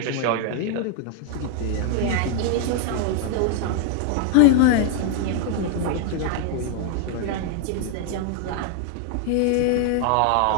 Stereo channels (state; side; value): different; both; correlation 0.00